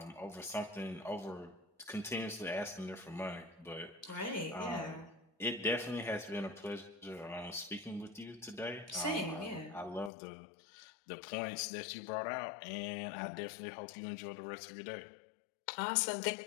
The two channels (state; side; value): drops out; right; at 10.1 s